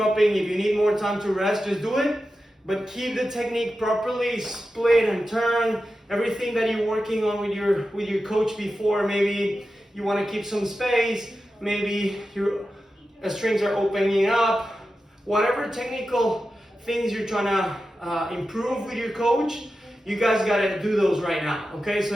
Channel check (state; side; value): normal; both; correlation 0.92